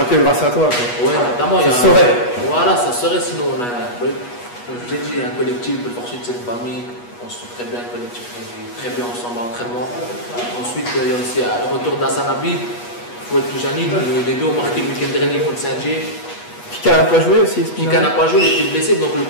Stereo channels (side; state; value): right; late; 8.3 ms